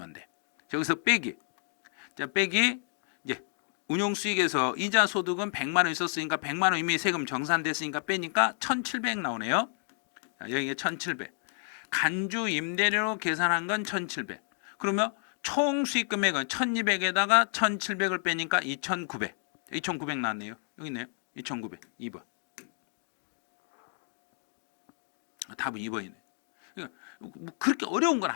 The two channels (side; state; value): right; silent; 57 dB below the other